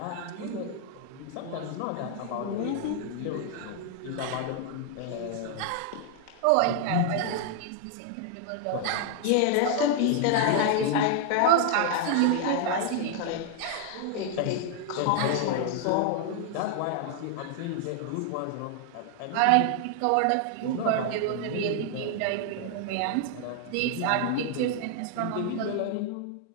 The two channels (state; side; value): different; both; correlation 0.00